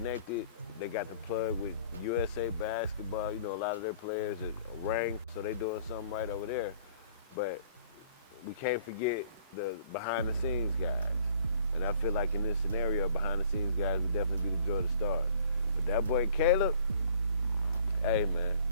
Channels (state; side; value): inverted; both; correlation -0.55